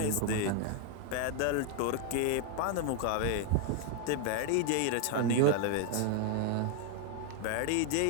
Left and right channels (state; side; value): different; both; correlation 0.00